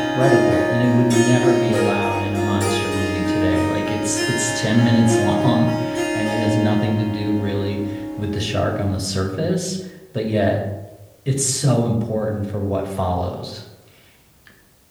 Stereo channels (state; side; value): identical; both; correlation 1.00